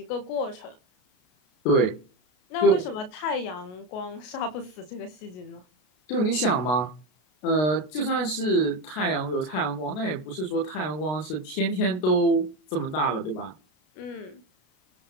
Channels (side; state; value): right; late; 33 ms